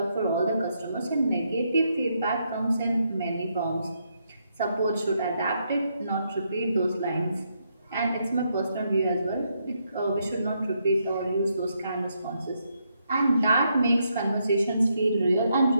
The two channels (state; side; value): inverted; both; correlation -0.78